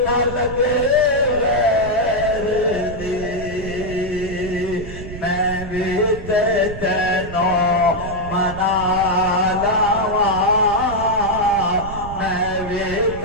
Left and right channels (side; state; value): right; noise; rumble, 10 dB below the sound